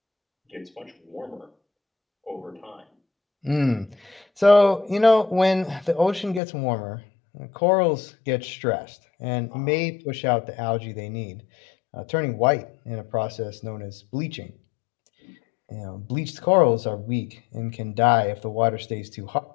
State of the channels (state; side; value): drops out; right; at 6.4 s